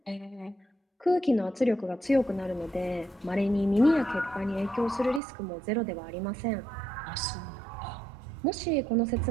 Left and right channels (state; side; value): drops out; left; at 5.2 s